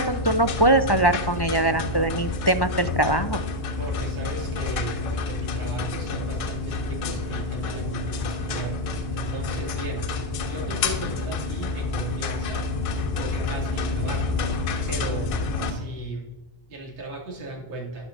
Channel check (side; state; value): right; late; 1.6 ms